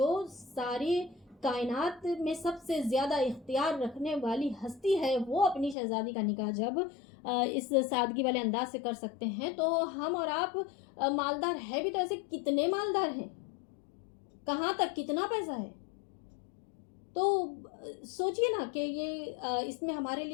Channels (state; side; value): drops out; right; at 5.8 s